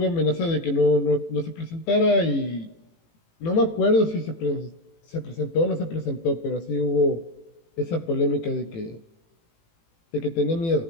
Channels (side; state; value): right; late; 18 ms